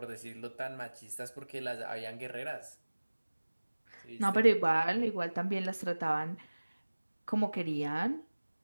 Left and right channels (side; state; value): both; inverted; correlation -1.00